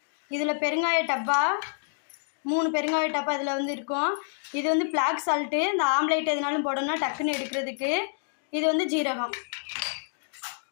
இதில் பெருங்காய டப்பா, 3 பெருங்காய டப்பா இதில் வந்து இருக்கும். இது வந்து பிளாக் சால்ட்டு, இந்த ஆம்லேட் எதுனாலும் போடணும்னா டக்குன்னு எடுக்கிறதுக்கு. இது வந்து ஜீரகம்.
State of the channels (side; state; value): right; silent; digital silence